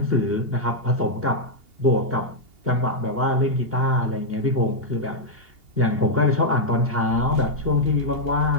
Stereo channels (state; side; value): late; left; 2.8 ms